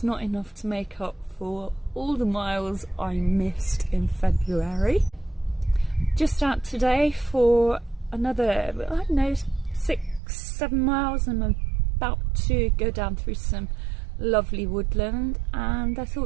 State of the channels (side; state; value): left; drops out; at 10.2 s